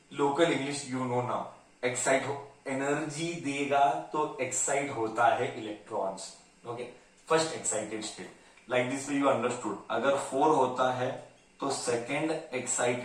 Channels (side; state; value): both; identical; correlation 1.00